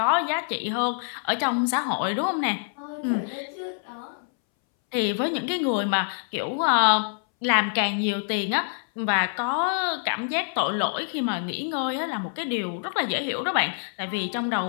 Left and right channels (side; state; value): right; silent; 61 dB below the other